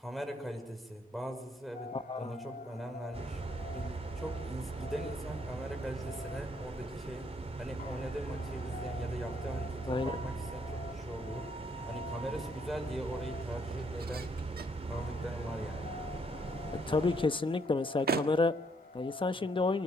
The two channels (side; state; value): both; normal; correlation 0.70